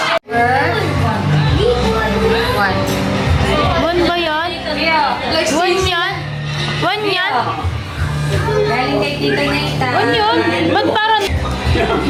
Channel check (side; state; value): both; identical; correlation 1.00